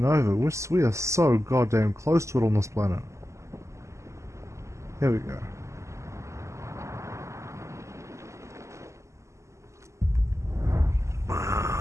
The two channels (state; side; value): late; left; 0.14 ms